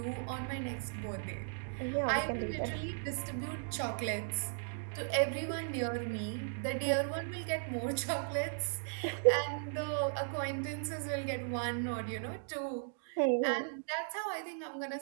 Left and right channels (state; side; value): silent; left; digital silence